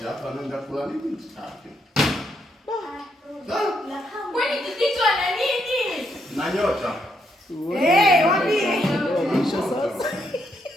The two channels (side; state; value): both; normal; correlation 0.77